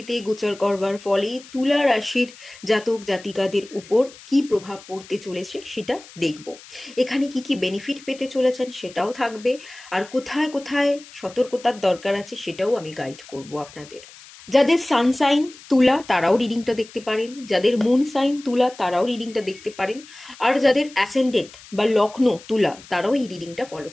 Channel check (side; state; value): left; noise; hiss, 20 dB below the sound